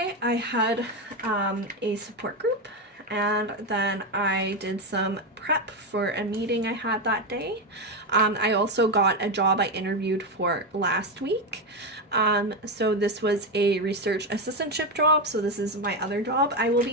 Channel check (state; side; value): normal; both; correlation 0.11